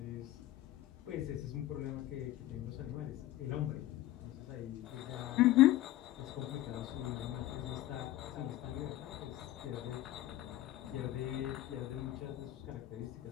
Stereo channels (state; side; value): quieter; right; 14.9 dB